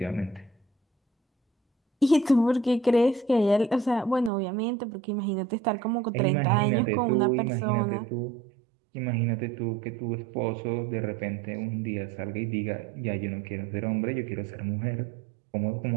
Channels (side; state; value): left; drops out; at 4.3 s